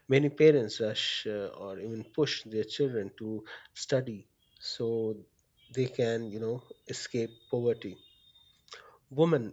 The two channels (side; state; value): both; identical; correlation 1.00